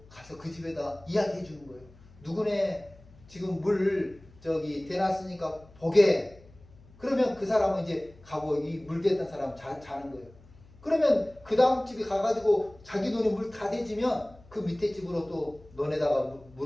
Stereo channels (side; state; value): left; noise; hum, 24 dB below the sound